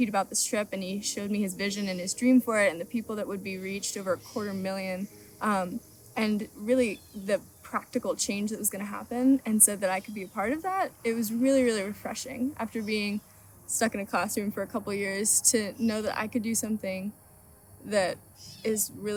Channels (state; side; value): identical; both; correlation 1.00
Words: about this trip, and he showed me his vision and his dream for it and the people that would be reached, over 250,000, and really the practical change that was going to happen, and said that I could be a part of that, it was really, really refreshing after being stuck in a classroom for a couple of years to know that I could do something that is